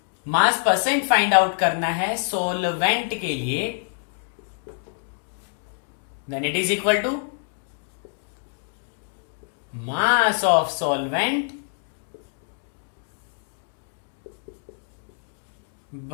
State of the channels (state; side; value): silent; right; digital silence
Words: मास परसेंट फाइंड आउट करना है सोलवेंट के लिए, then it is equal to mass of solvent